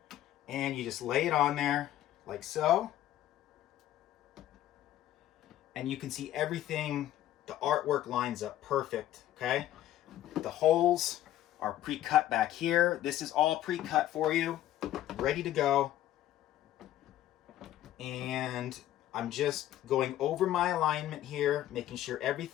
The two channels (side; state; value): right; quieter; 13.1 dB